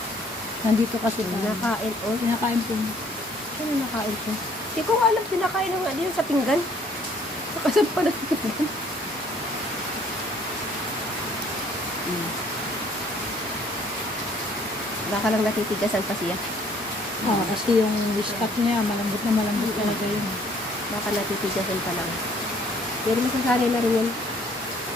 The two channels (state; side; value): normal; both; correlation 0.60